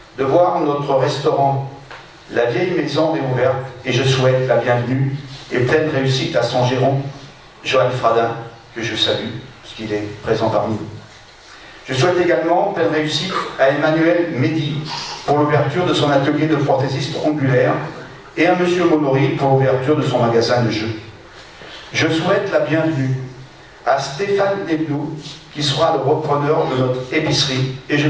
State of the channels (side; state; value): both; identical; correlation 1.00